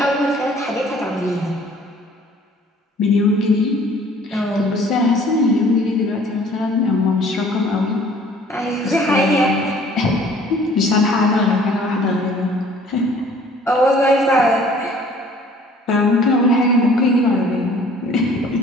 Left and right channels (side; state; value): both; normal; correlation 0.54